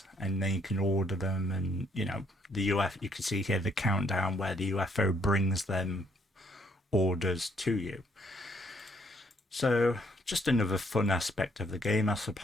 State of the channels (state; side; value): normal; both; correlation 0.69